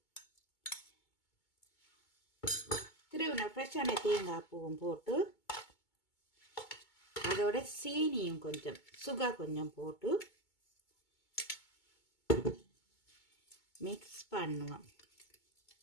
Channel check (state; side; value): late; right; 2.2 ms